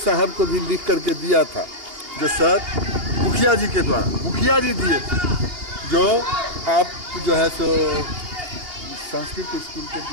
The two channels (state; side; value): late; left; 2.8 ms